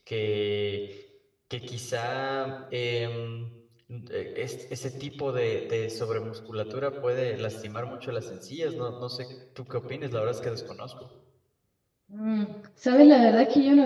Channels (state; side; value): identical; both; correlation 1.00